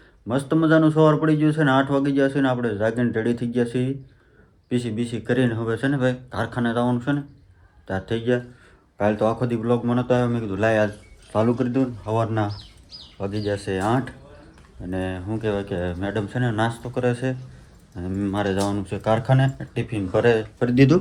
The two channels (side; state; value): both; identical; correlation 1.00